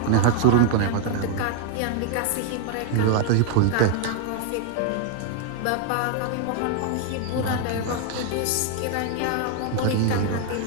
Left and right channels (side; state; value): both; different; correlation 0.00